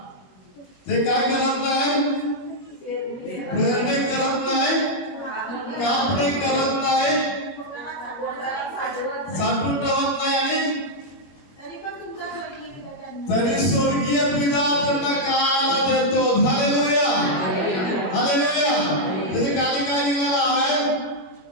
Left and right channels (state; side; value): late; right; 21 ms